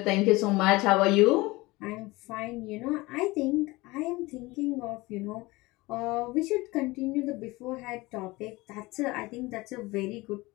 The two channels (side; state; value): right; quieter; 21.7 dB